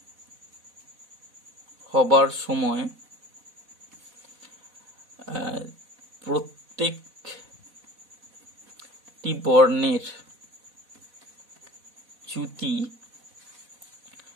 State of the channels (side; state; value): left; late; 4.1 ms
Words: হবার সময় প্রত্যেকটি বর্ণের চ্যুতি